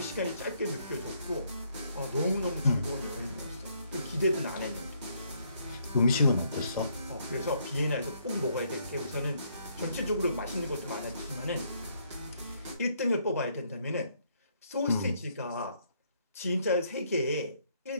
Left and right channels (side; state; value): both; inverted; correlation -0.70